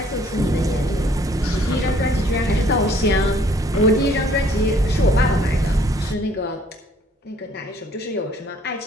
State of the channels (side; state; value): both; normal; correlation 0.60